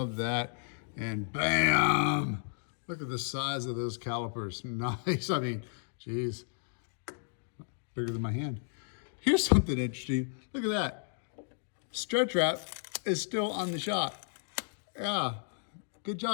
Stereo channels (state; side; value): silent; right; digital silence